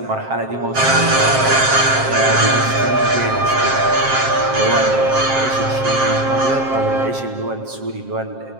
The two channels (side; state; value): left; late; 7.6 ms